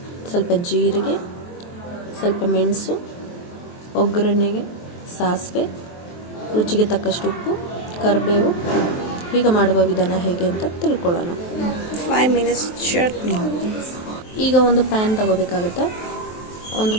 ಸ್ವಲ್ಪ ಜೀರಿಗೆ, ಸ್ವಲ್ಪ ಮೆಣಸು, ಒಗ್ಗರಣೆಗೆ ಸಾಸಿವೆ, ರುಚಿಗೆ ತಕ್ಕಷ್ಟು ಉಪ್ಪು, ಕರಿಬೇವು. ಈಗ ಮಾಡುವ ವಿಧಾನ ಹೇಗೆ ಅಂತ ತಿಳ್ಕೊಳ್ಳೋಣ. 5 minutes ಚಟ್ನಿ. ಈಗ ಒಂದು ಪ್ಯಾನ್ ತಗೋಬೇಕಾಗುತ್ತೆ. ಒಂದು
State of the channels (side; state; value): right; late; 23 ms